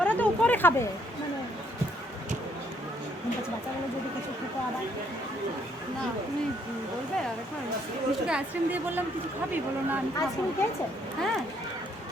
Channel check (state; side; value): normal; both; correlation 0.69